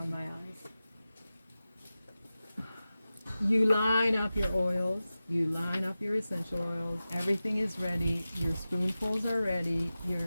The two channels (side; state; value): both; inverted; correlation -0.95